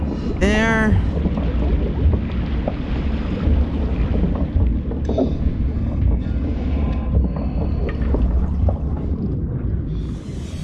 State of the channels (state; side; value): identical; both; correlation 1.00